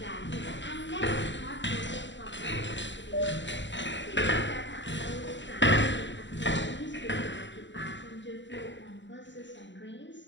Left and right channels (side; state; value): right; late; 0.53 ms